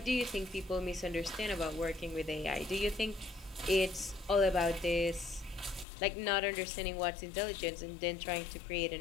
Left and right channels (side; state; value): right; drops out; at 5.9 s